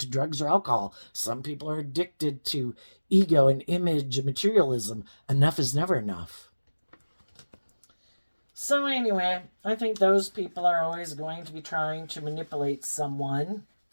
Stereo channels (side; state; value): both; inverted; correlation -1.00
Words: drugs or alcohol. Some people are addicted to ego and image and materialism. Enough is never enough. So, anyway, I think those people are always going to be trying to manipulate someone